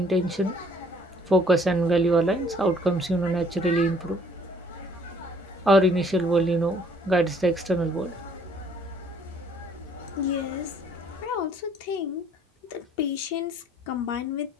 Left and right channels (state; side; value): normal; both; correlation 0.60